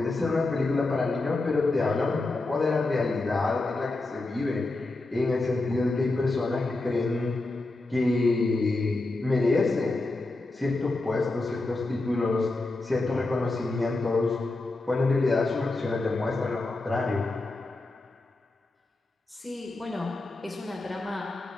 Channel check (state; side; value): quieter; right; 3.1 dB